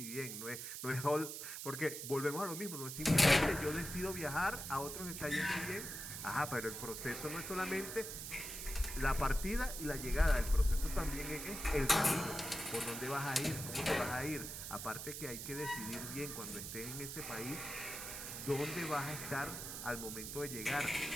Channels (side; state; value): right; noise; hiss, 7 dB below the sound